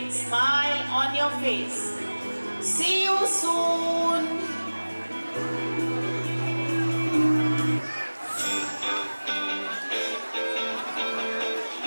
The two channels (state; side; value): inverted; both; correlation -1.00